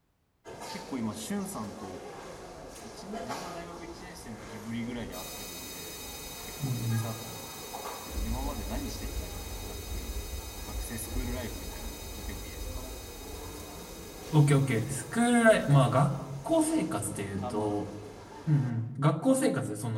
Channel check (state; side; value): identical; both; correlation 1.00